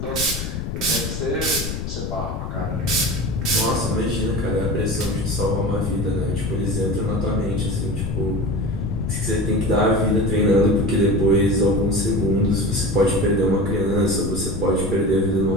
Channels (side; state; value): left; noise; rumble, 5 dB below the sound